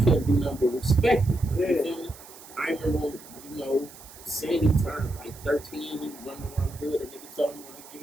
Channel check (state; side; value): noise; right; hiss, 19 dB below the sound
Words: couldn't do nothing but respect it. Yeah. You feel me? I remember, Sandy turned like 13, he running around the hood, and nigga told him, like,